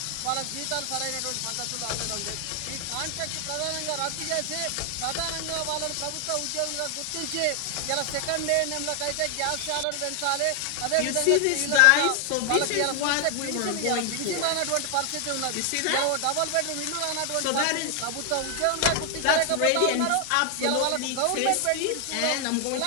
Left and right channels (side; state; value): both; different; correlation 0.00